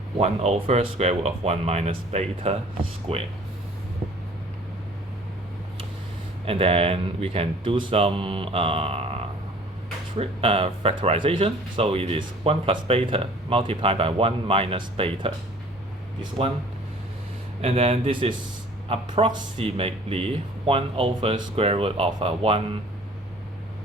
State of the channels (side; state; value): both; normal; correlation 0.50